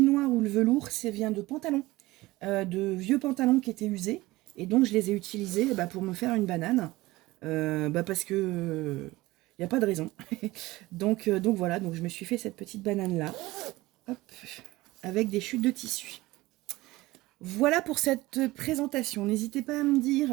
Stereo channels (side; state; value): left; quieter; 19.3 dB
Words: noir ou le velours, ça vient de pantalons. De vieux pantalons qui étaient usés. Et donc je les ai utilisés pour me faire une banane. Parce que il n'y a pas de raison. donc voilà, donc je me suis fait cette petite banane là. Hop, avec des chutes de tissu. Voilà pour cette présentation. N'hésitez pas à me